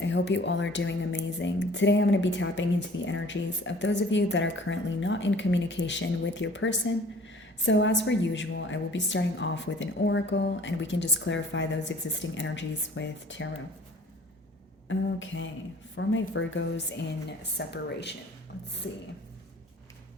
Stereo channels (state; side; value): normal; both; correlation 0.50